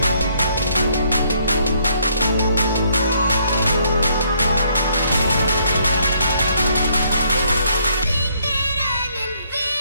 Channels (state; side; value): inverted; both; correlation -0.69